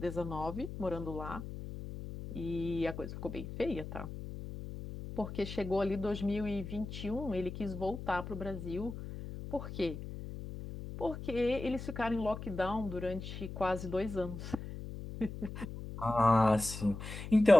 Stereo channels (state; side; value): noise; left; hum, 9 dB below the sound